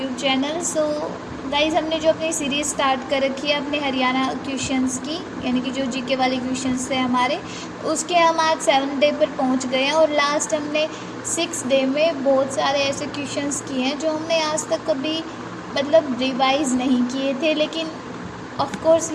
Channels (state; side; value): identical; both; correlation 1.00